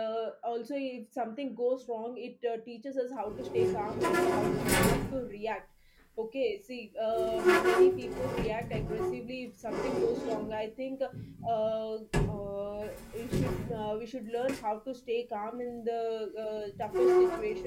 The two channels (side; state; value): both; identical; correlation 1.00